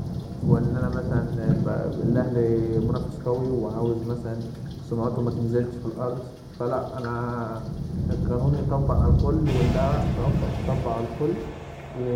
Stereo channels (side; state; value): both; identical; correlation 1.00